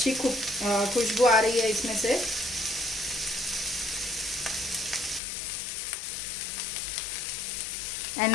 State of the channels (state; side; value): drops out; right; at 5.2 s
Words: खुशबू आ रही है इसमें से. And